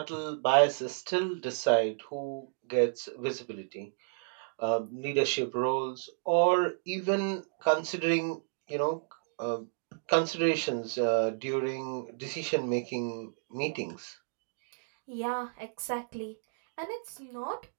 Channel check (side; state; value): left; silent; digital silence